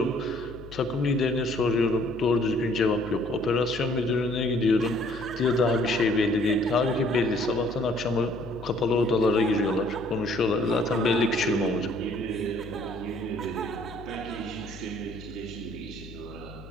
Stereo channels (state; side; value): noise; left; hum, 16 dB below the sound